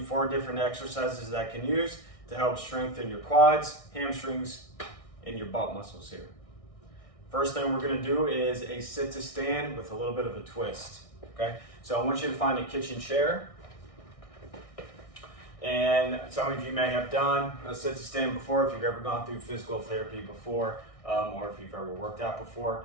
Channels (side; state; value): right; late; 1.6 ms